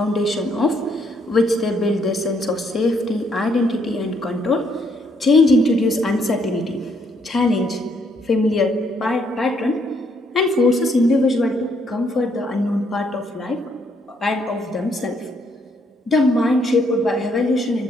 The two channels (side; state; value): both; normal; correlation 0.71